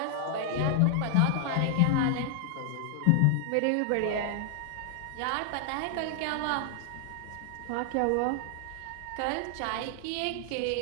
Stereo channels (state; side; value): different; both; correlation 0.00